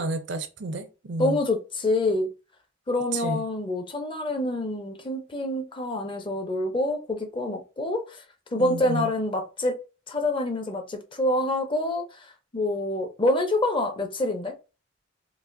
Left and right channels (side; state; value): both; normal; correlation 0.47